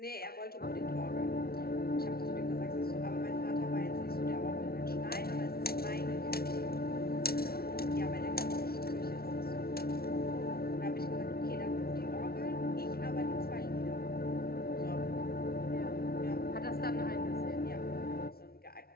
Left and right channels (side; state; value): right; late; 0.44 ms